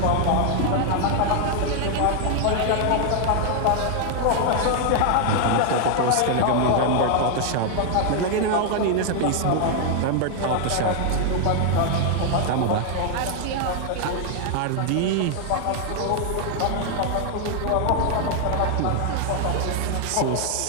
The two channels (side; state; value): both; different; correlation 0.00